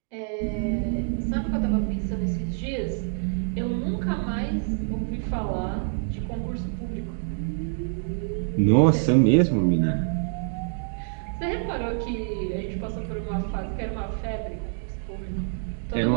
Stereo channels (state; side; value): silent; left; digital silence